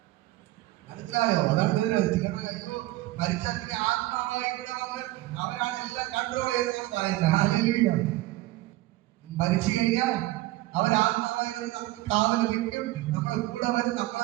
മനസ്സിലായോ? അതാണ് അയ്യോ മരിച്ചാൽ പിന്നെ ആത്മാവായി ഇവിടെ വന്ന് അവരാണ് എല്ലാം കൺട്രോൾ ചെയ്തെന്നാണ് പറയുന്നത്. ഹല്ലേലൂയ. മരിച്ചു കഴിഞ്ഞാൽ അവരാത്മാവായി വന്ന് നമുക്ക് കാവൽ നിൽക്കും, നമ്മളെ കൂടെ വരും,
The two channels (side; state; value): left; quieter; 17.7 dB